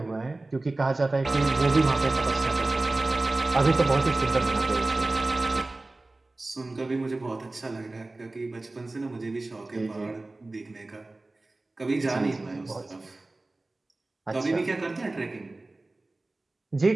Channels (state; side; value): quieter; left; 3.0 dB